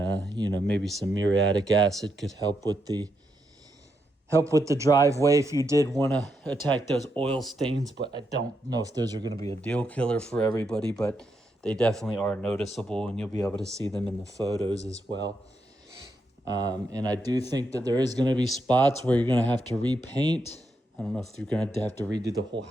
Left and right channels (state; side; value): normal; both; correlation 0.82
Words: maybe some muriatic acid could help with the driveway if you did want to attack those oil stains. But I don't know if those are going to be a deal killer for everybody, but they definitely are noticeable, and you'll be able to see them in the photos as well. And I do think that there is going to be spots where you're going to have to repaint. I don't know if you're going to have to redo the whole